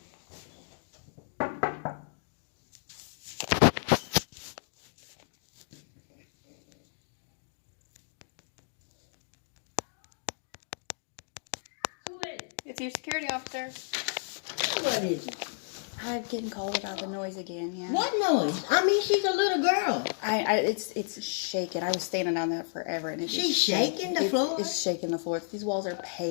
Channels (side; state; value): right; silent; digital silence